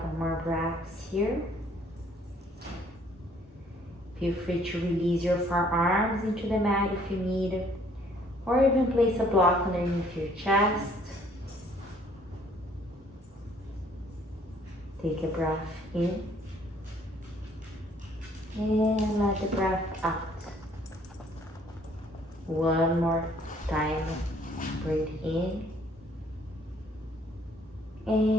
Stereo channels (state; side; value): normal; both; correlation 0.61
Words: more breaths here. Feel free to release your forearms into the mat if you need, or even place a block underneath your chest. Take a breath in, and let the breath out. One more time, breathe in,